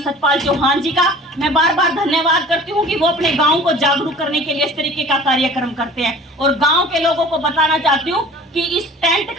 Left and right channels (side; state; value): both; normal; correlation 0.45